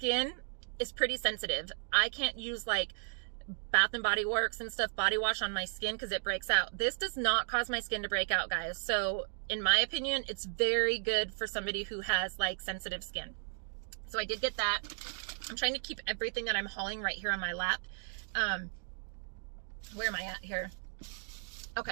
is pretty sensitive. I can't use like Bath and Body Works and stuff body wash on my skin because it breaks out. This does not cause my skin to break out, guys. So in my opinion, it's very good for somebody who has like sensitive skin. So I did get that. I'm trying to keep everything that I'm hauling right here on my lap. Where am I at here?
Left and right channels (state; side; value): silent; left; digital silence